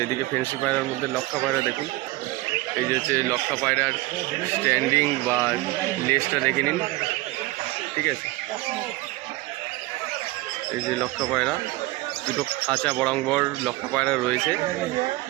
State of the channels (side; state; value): left; quieter; 20.0 dB